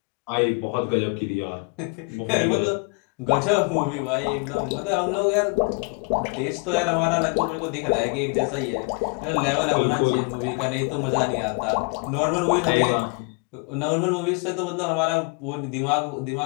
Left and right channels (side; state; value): right; quieter; 32.5 dB